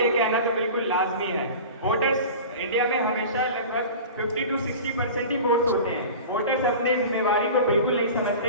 कहना तो बिल्कुल लाजमी है। वोटर्स इंडिया में हमेशा लगभग 50 to 60% ही वोट होते हैं। वोटर्स अपने जिम्मेवारी को बिल्कुल नहीं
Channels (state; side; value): inverted; both; correlation -0.36